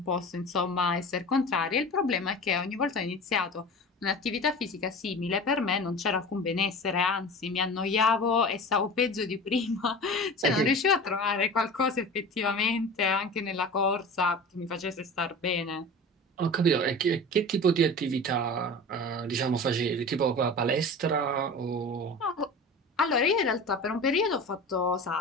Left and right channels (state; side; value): normal; both; correlation 0.34